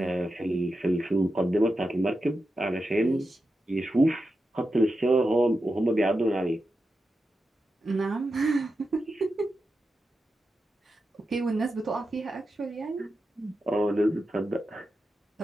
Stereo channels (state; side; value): normal; both; correlation 0.89